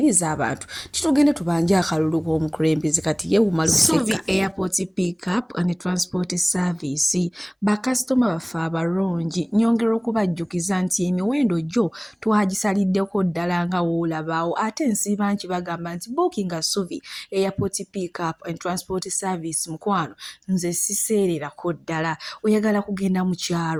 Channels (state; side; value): identical; both; correlation 1.00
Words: abantu kitugende tubanje akalulu k'omukulembeze kati yeewuma Suvi Airport Pick Up and Transport Service bakasitoma baffe abalungi nyongera okubajjukiza nti emiwendo gyo twagisaliddeko ddala nga woolabaawo ate nsiiba nkibagamba nti booking Suvi Airport Pick Up and Transport Service mukwano nze siseererako ddala oyagala kugenda mu